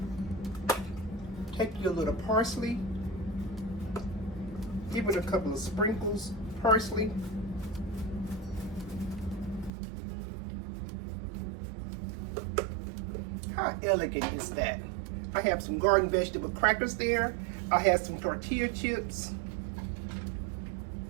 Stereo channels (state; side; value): drops out; left; at 9.7 s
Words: Take your little parsley, give it a couple of sprinkles, parsley. How elegant is that? I have some garden vegetable crackers there. I have some tortilla chips.